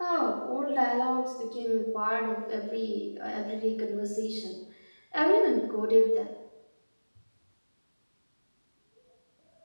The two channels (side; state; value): both; inverted; correlation -1.00